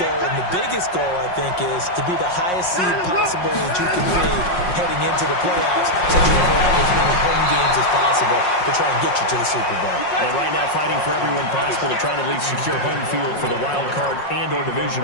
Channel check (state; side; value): late; right; 5.5 ms